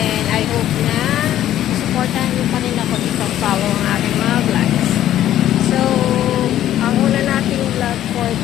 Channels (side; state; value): right; quieter; 12.3 dB